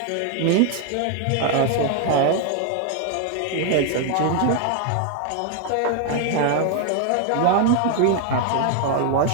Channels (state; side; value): different; both; correlation 0.00